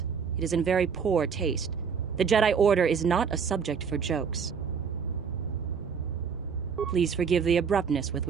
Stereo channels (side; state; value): left; quieter; 6.4 dB